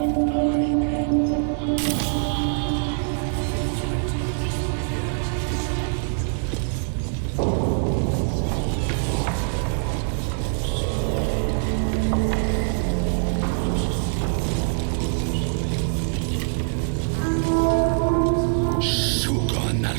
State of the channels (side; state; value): left; silent; digital silence